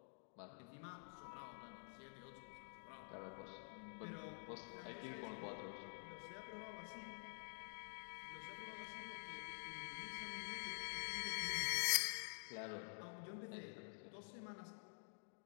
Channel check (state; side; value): silent; right; digital silence